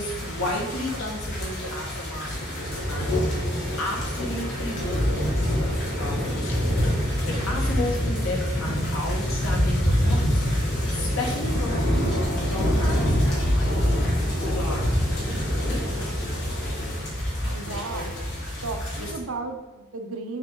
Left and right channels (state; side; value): normal; both; correlation 0.77